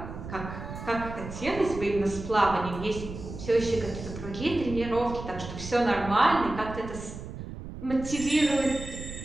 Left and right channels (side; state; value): right; noise; rumble, 10 dB below the sound